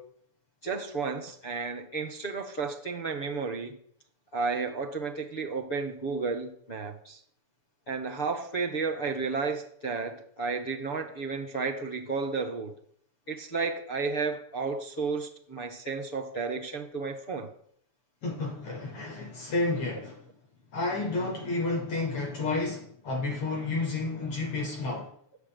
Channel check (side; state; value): right; late; 6.9 ms